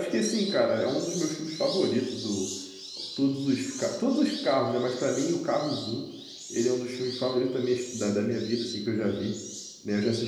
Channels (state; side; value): identical; both; correlation 1.00